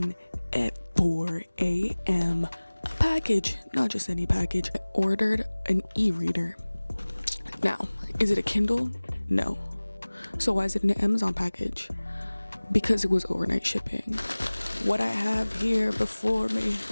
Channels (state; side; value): inverted; both; correlation -1.00